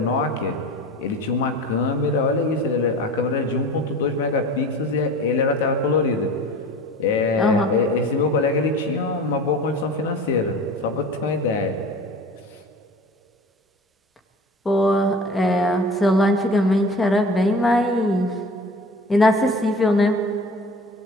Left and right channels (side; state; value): both; normal; correlation 0.39